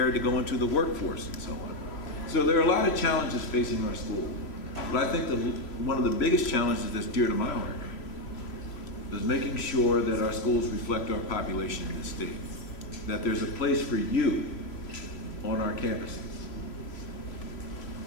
to go into the workforce and so on. So there are a lot of challenges facing our school. But I think one of the biggest challenges that's dear to my heart is making sure that our schools reflect our population in the state, that there's a place for you on our campuses.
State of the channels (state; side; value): late; right; 3.0 ms